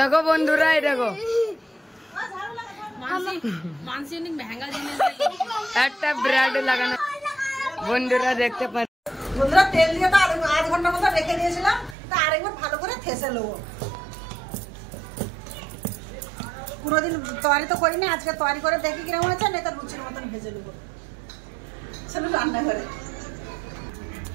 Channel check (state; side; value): drops out; left; at 12.0 s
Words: বন্ধুরা এই দেখো मानसी ने महंगा जिनिस একটা ব্রেড লাগানো। বন্ধুরা দেখতে পারেন, বন্ধুরা তেল দিয়ে তো আধ ঘন্টার মতো রেখে দিয়েছিলাম, তা আরেকবার ভালো করে থেসে নেবো। কোনোদিন তৈরি তো করিনি, আজকে তৈরি করে দেখি কিরকম হয়েছে, না তার লুচির মতন ভেজে নেবো। চলো রান্না করে